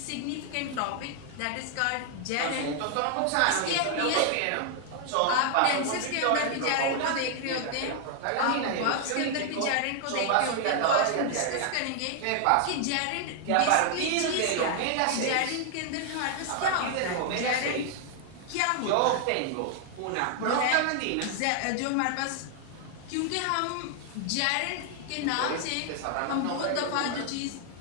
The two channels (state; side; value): different; both; correlation 0.00